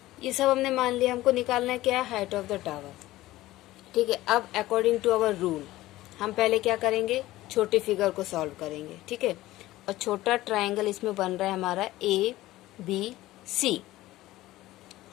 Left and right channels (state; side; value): quieter; right; 16.7 dB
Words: ये सब हमने मान लिया। हमको निकालना है क्या, हाइट ऑफ द टावर। ठीक है, अब अकॉर्डिंग टू आवर रूल हम पहले क्या करेंगे, छोटी फिगर को सॉल्व करेंगे। ठीक है, और छोटा ट्राइंगल इसमें बन रहा है हमारा ABC।